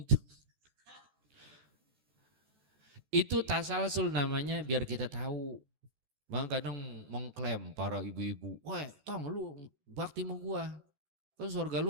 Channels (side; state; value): left; late; 14 ms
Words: itu. Itu tasalsul namanya biar kita tahu. Bang kadang mengklaim para ibu-ibu, wah tong lu bakti sama gua. Kan sorga